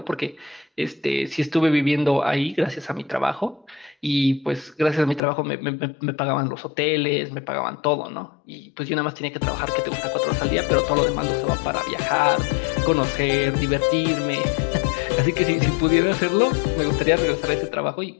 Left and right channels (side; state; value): right; drops out; at 5.2 s